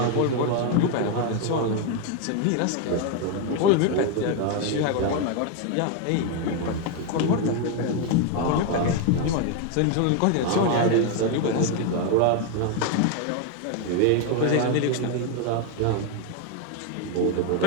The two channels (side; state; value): both; different; correlation 0.01